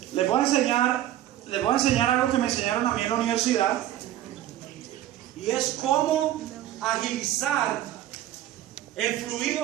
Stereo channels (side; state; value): left; quieter; 13.0 dB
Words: Les voy a enseñar algo que me enseñaron a mí en la universidad, y es cómo agilizar el